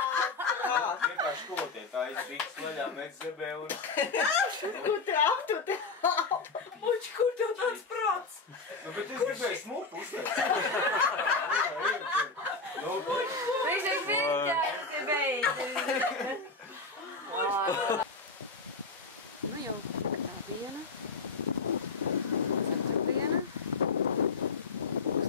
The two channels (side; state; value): right; quieter; 4.0 dB